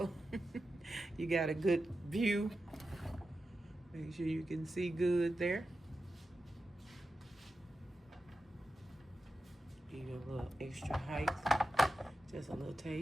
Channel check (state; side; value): normal; both; correlation 0.91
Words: You got a good view. Make sure you can see good there. Give you a little extra height, just a little